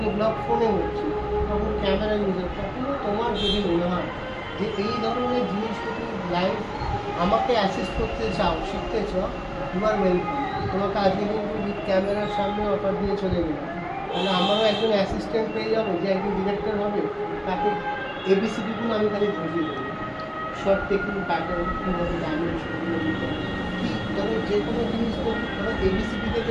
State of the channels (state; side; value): identical; both; correlation 1.00